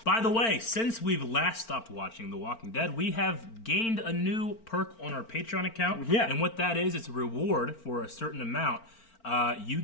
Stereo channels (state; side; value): late; right; 4.4 ms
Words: By the way, since we've last stopped watching The Walking Dead, we have gained a new perk on our Patreon account. Yeah. And what that is, it's a reward for a certain amount. You